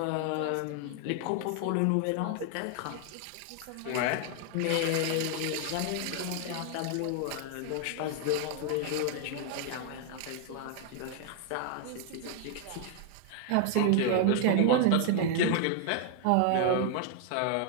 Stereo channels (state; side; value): different; both; correlation 0.00